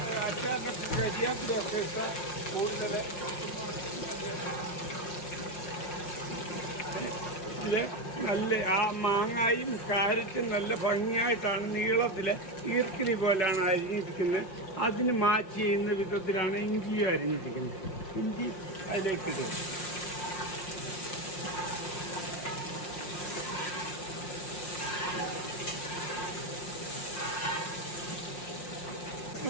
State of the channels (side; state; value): right; late; 5.7 ms